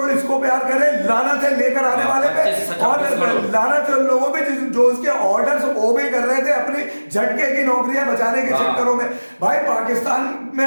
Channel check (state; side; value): inverted; both; correlation -1.00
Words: इसको प्यार करे, लानत है लेकर आने वाले पे, और लानत है उन लोगों पे जो उसके ऑर्डर्स ओबे कर रहे थे अपनी झटके की नौकरियां बचाने के चक्करों में। भाई पाकिस्तान में